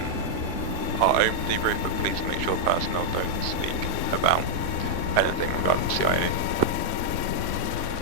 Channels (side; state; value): right; late; 3.5 ms